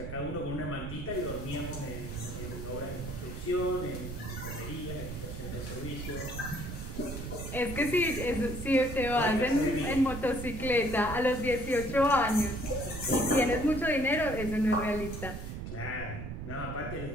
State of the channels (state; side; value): noise; right; rumble, 7 dB below the sound